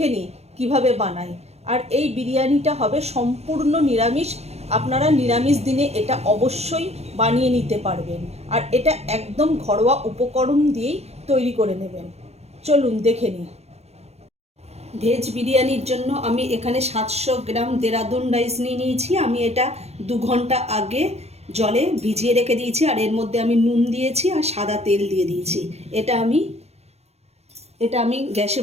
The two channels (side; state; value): left; late; 0.31 ms